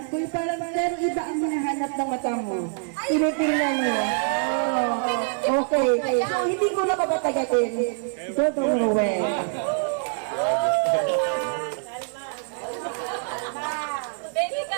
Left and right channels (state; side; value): silent; left; 62 dB below the other